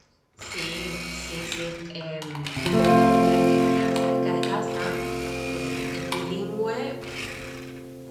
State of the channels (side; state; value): both; identical; correlation 1.00